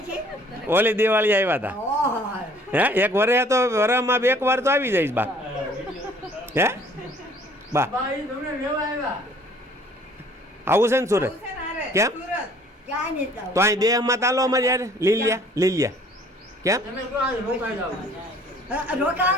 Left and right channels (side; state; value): both; normal; correlation 0.56